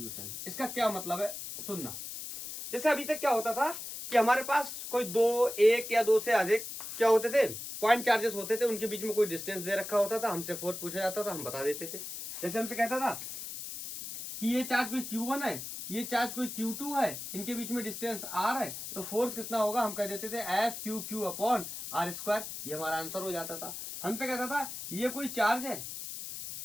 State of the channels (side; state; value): left; noise; hiss, 8 dB below the sound